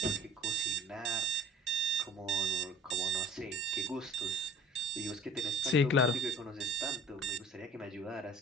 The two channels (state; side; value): normal; both; correlation 0.48